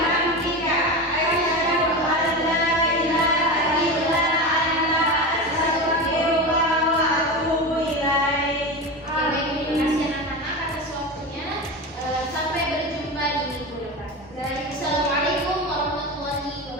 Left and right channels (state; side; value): normal; both; correlation 0.24